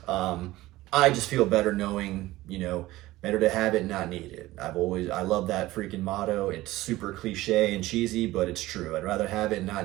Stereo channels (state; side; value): quieter; left; 17.5 dB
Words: I just feel better knowing, better to have it, not need it. I love that freaking motto. It's super cliche and cheesy, but it's true. I'd rather have it and not